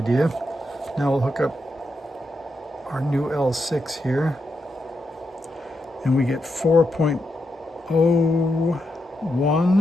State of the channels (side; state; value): both; normal; correlation 0.84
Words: Now we'll hook up our new L6 here, and we get